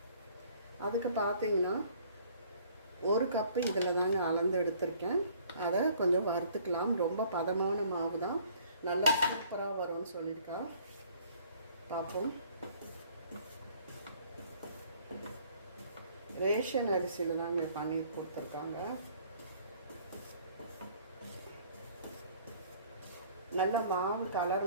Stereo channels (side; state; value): both; inverted; correlation -0.57